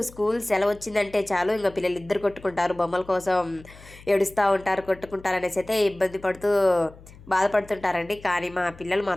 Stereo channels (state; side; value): noise; left; hum, 21 dB below the sound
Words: స్కూల్ సెలవు వచ్చిందంటే చాలు ఇంక పిల్లలు ఇద్దరు కొట్టుకుంటారు, బొమ్మల కోసం ఏడుస్తూ ఉంటారు, కొట్టుకుంటారు అనేసి అయితే ఇబ్బంది పడుతూ బాధపడుతుంటారండి. కానీ మా పిల్లలు